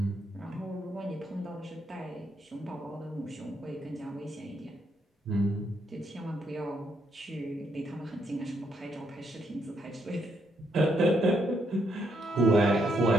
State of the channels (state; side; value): normal; both; correlation 0.76